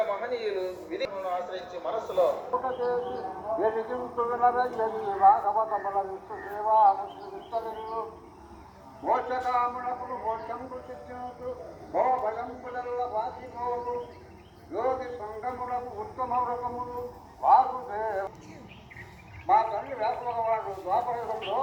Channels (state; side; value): identical; both; correlation 1.00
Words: మహనీయులు విధిని ఆశ్రయించి మనస్సులో మోక్షకామునకులు మోక్షంకు చిత్తునకు భో భయంబులల్ల వాసిపోవు యోగి సంగములకు ఉత్తమ వ్రతములు వాసుదేవ. మా తల్లి వ్యాసభగవాడు ద్వాపరయుగంలో